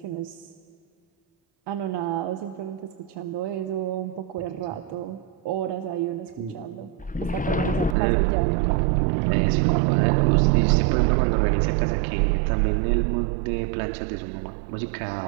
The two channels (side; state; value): left; drops out; at 8.0 s